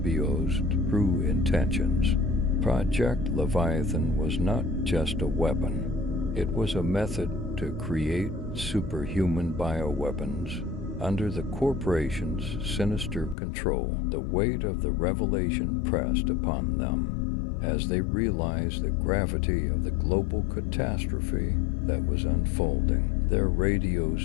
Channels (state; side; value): drops out; right; at 13.4 s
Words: true intentions. Project Leviathan was not just a weapon. It was a method to create superhuman bioweapons under the corporation's sinister control. The weight of the revelation pressed upon them as they realized the gravity of the global catastrophe that was unfolding. Their